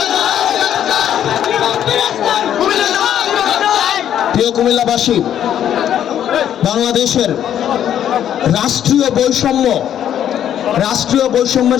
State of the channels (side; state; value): right; quieter; 10.2 dB